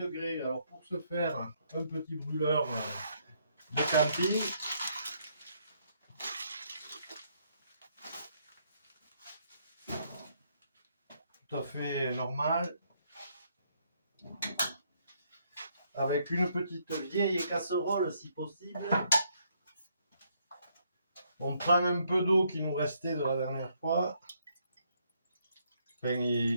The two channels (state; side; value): inverted; both; correlation -0.72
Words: Alors pour ce faire, un petit brûleur de camping. Tout à fait normal. Avec une petite vieille casserole si possible. On prend un peu d'eau qui nous restait de la dernière fois. Enfin,